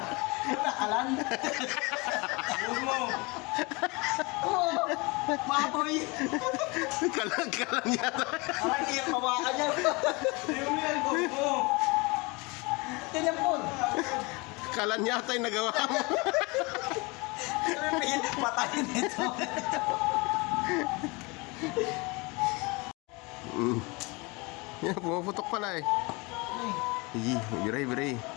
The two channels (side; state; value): right; quieter; 26.5 dB